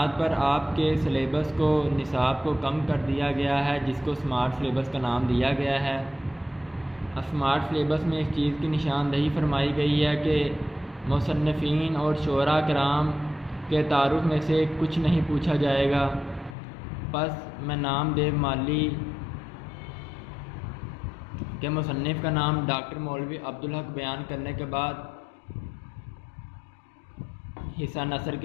پر آپ کے سلیبس کو نصاب کو کم کر دیا گیا ہے، جس کو اسمارٹ سلیبس کا نام دیا گیا ہے۔ اسمارٹ سلیبس میں اس چیز کی نشاندہی فرمائی گئی ہے کہ مصنفین اور شعراء کرام کے تعارف میں سے کچھ نہیں پوچھا جائے گا۔ پس میں نام دیو مالی کے مصنف کا نام ڈاکٹر مولوی عبدالحق بیان کرنے کے بعد حصہ نثر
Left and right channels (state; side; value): drops out; right; at 16.6 s